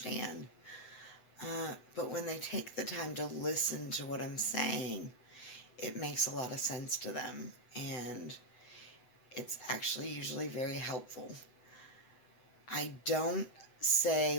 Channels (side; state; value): right; late; 7.9 ms